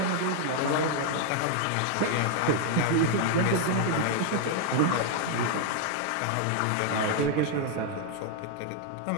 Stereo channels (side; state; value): both; different; correlation 0.00